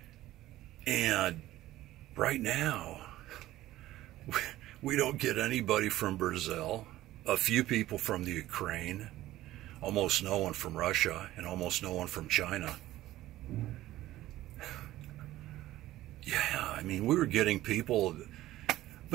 And right now, we don't get anybody from Brazil, a few people from the Ukraine, almost no one from Russia, and almost no one from China. Yeah, I mean, we were getting people.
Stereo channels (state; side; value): quieter; left; 15.3 dB